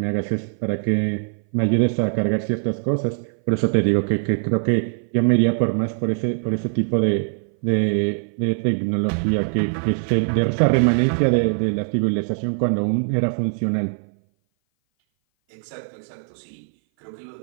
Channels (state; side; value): silent; left; 58 dB below the other